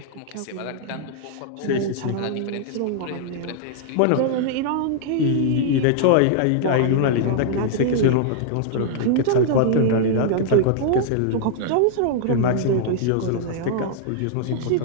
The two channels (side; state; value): both; different; correlation -0.01